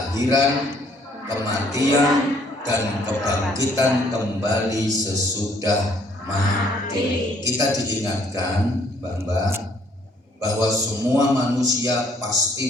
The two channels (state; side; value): normal; both; correlation 0.64